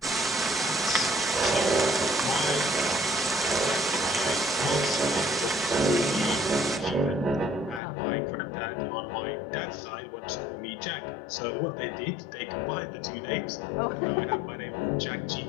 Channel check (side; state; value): right; drops out; at 7.8 s